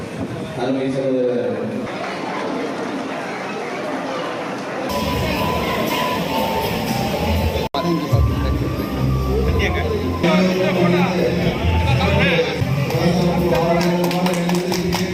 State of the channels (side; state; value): both; identical; correlation 1.00